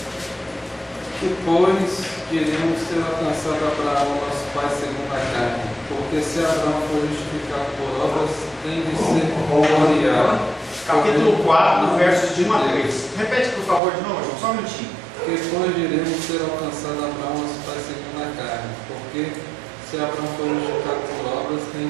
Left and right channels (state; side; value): drops out; left; at 13.8 s